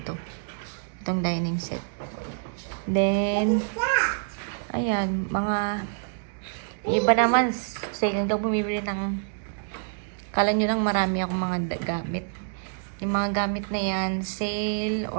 to. Itong dining set. Then, ayan, mga iba naman, second daw bumibili ng kala nyo lang marami akong mga gamit. Yung mga gamit na yan, sale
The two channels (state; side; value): silent; left; digital silence